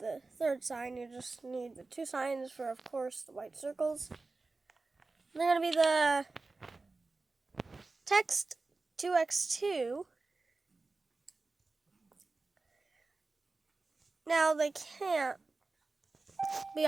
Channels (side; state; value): left; quieter; 3.6 dB